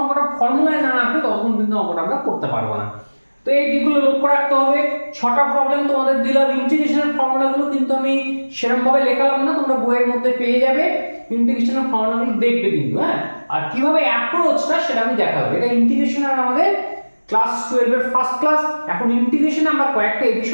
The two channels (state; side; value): inverted; both; correlation -1.00